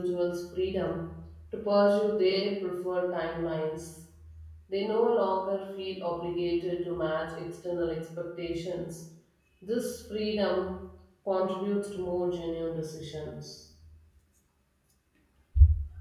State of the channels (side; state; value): both; identical; correlation 1.00